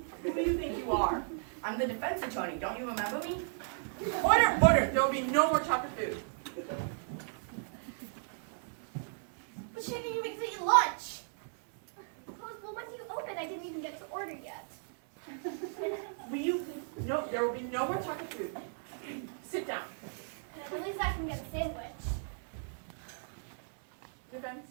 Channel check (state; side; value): silent; left; digital silence